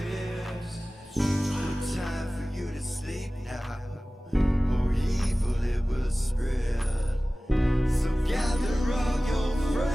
No time for you to sleep now, or evil it will spread. So gather all your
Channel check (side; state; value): both; normal; correlation 0.97